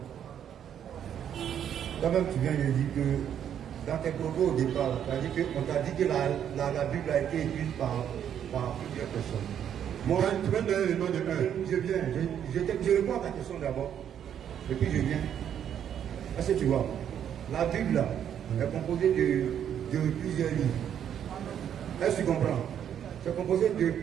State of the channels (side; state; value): left; quieter; 9.3 dB